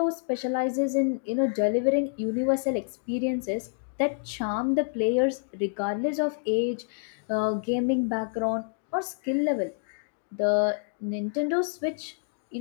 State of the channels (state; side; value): silent; right; digital silence